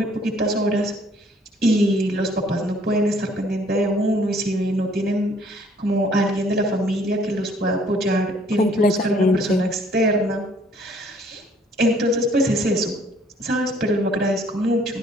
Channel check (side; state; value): both; normal; correlation 0.60